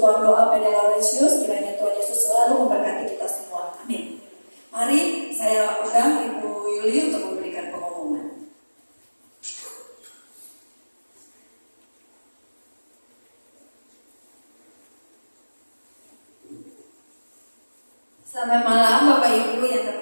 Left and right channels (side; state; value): both; inverted; correlation -1.00